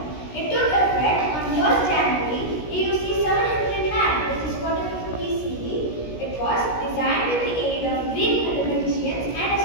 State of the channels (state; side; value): late; right; 17 ms